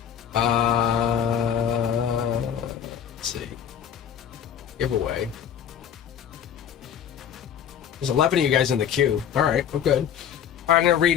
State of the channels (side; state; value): right; quieter; 8.9 dB